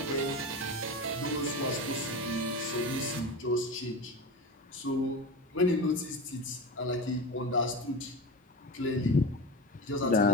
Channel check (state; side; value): normal; both; correlation 0.26